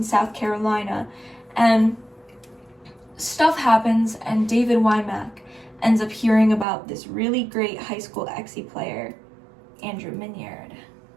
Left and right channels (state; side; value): drops out; left; at 6.7 s